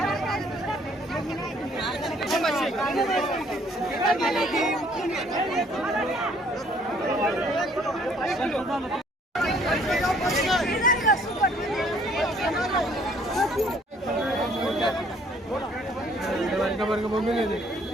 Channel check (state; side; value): normal; both; correlation 0.61